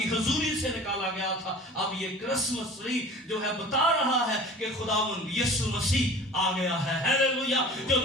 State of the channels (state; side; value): normal; both; correlation 0.42